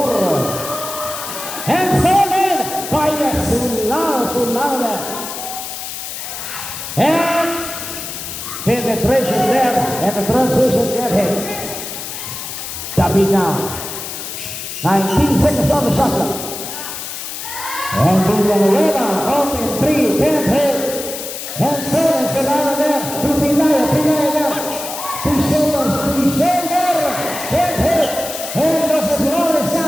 And stolen by Solano there. And penetration there, and the transition get hit. David now. 19 seconds on the shot clock. And Villanueva open 3, can't hit. And stolen Solano there to Pinaya there. He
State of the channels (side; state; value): left; noise; hiss, 8 dB below the sound